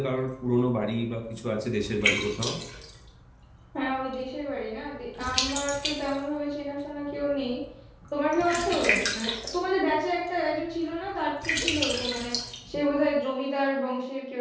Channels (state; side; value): identical; both; correlation 1.00